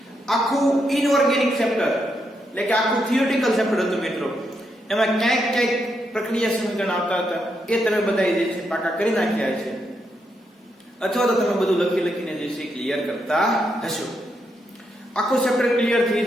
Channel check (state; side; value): normal; both; correlation 0.81